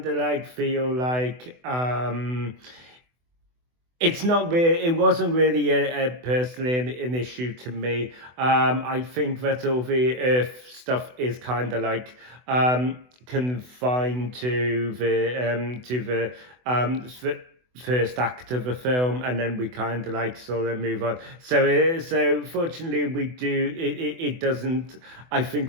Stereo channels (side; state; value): left; late; 24 ms